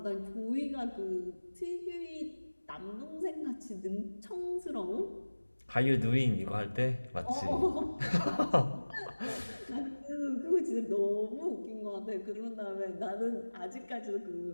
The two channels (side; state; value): both; inverted; correlation -1.00